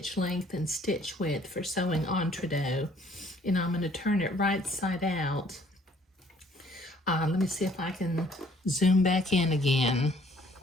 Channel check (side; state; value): both; normal; correlation 0.60